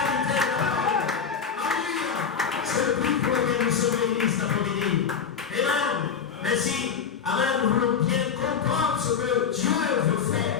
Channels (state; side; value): quieter; right; 6.7 dB